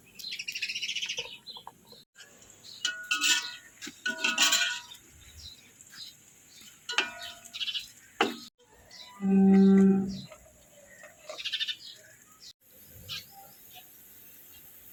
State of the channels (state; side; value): identical; both; correlation 1.00